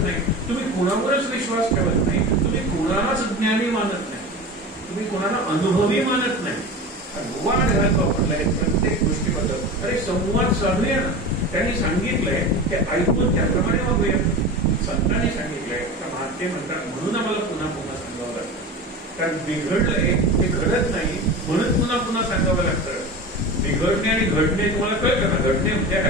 नाही, तुम्ही कुणावरच विश्वास ठेवत नाही, तुम्ही कुणालाच ज्ञानी मानत नाही, तुम्ही कुणाला अनुभवी मानत नाही. गोवा घरात वापरलाय प्रत्येक गोष्टीबद्दल. अरे संवाद साधूया ना. त्यांनी सांगितलंय ते ऐकून त्याप्रमाणे वागूया. संतांनी सांगितलंय, महात्मे म्हणतात, म्हणून आम्हाला पुन्हा पुन्हा सांगावं लागतं. कारण बिघडलंय ते घडत नाही, म्हणून पुन्हा पुन्हा सांगावं लागतं. बिघडणे आणि घडणे तुम्हाला कळतं ना. घडणे म्हणजे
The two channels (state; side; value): normal; both; correlation 0.30